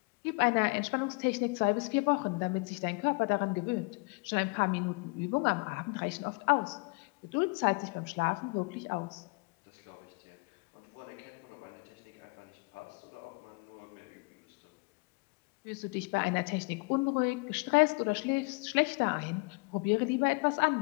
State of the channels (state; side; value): quieter; right; 30.0 dB